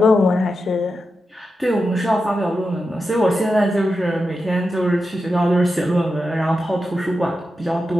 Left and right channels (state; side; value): normal; both; correlation 0.89